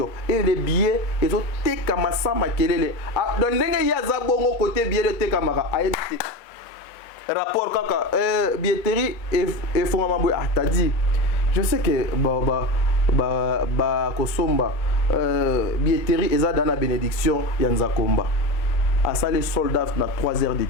et les billets ezo teka masama kelele donc ndenge ya za bongo côté billet de teka maka ayebite rapport kaka billetterie et fongama t'as dit. Je sais que Kosomba billetterie eza dans la bénédiction Yanza Komba. À ça les soldats na 3 heures de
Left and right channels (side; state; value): right; late; 2.2 ms